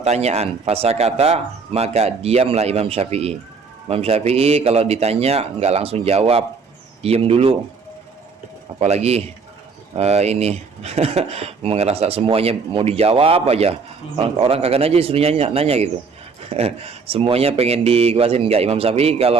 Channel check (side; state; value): left; quieter; 5.0 dB